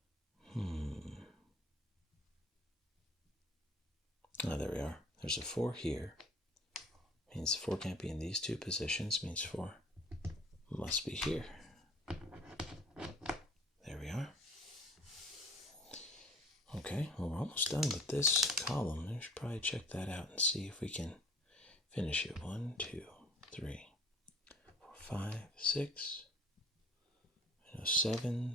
Oh, there we are. There's a 4 here. Means 4 can't be in these 2 positions. Means 4 must be here. There we are. Okay, well, we're almost done with this column. We should probably check that out and see if we can finish it. 1, 2, 3, 4, 5, 6.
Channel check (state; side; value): normal; both; correlation 0.48